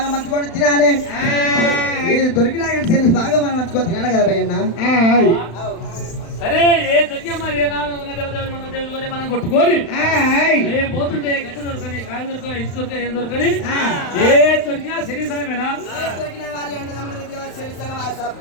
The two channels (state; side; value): late; right; 35 ms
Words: మంచుకొని తినాలి దొరికినా శరీరం బాగా మనం మంచుకొని తినాలి కదా భయ్యన్న సరే ఏ దొరికా మరి ఏ మన దేవుడు మనం కొట్టుకోని ఏం పోతుంటే గడ్డ దొరకని కాయ దొరకని ఇటు దొరకని ఏం దొరకని ఏ దొరికినా శరీర సమయమేనా